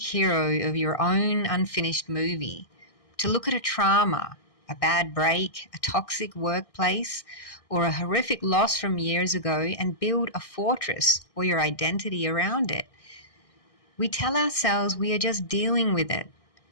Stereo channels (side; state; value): right; late; 1.6 ms